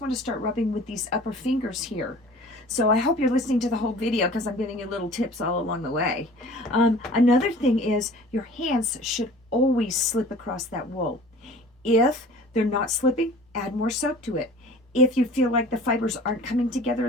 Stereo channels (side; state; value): both; normal; correlation 0.45